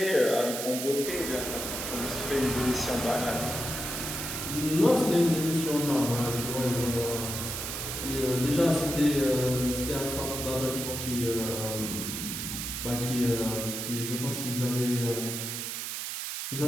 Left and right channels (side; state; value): right; noise; hiss, 4 dB below the sound